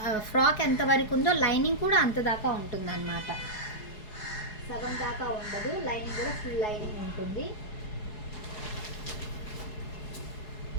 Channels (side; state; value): right; late; 4.7 ms